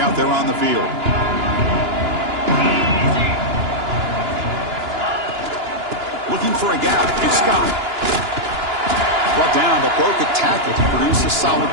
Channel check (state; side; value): late; left; 2.9 ms